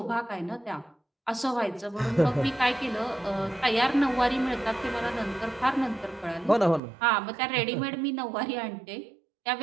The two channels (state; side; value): drops out; left; at 6.8 s